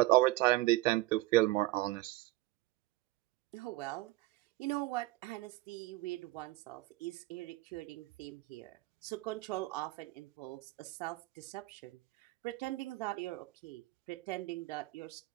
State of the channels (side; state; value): left; quieter; 18.4 dB